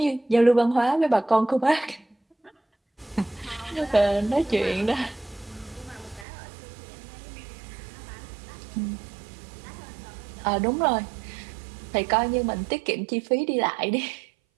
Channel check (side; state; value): left; drops out; at 6.2 s